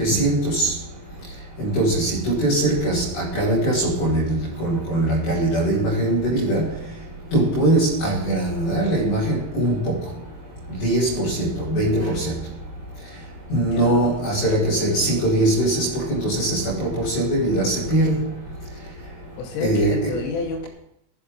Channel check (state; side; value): late; right; 24 ms